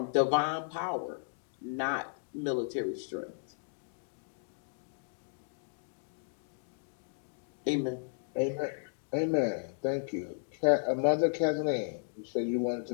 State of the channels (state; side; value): silent; right; digital silence